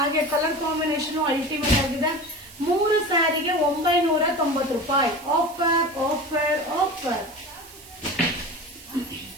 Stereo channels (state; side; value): noise; right; hiss, 19 dB below the sound